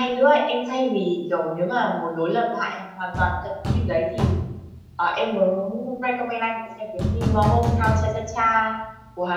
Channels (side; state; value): both; identical; correlation 1.00